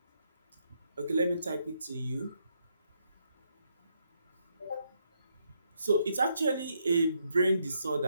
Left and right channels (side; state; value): both; inverted; correlation -0.77